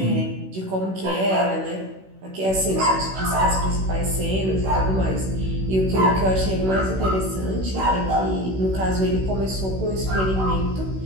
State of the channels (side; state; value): left; late; 16 ms